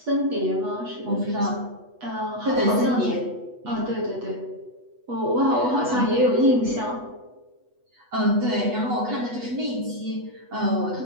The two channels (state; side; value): late; left; 8.1 ms